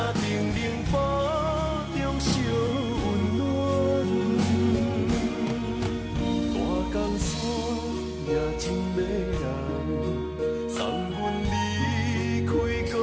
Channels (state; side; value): identical; both; correlation 1.00